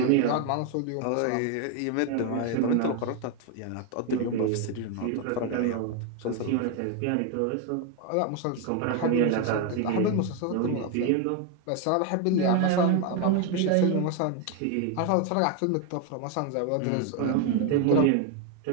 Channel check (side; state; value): both; different; correlation 0.01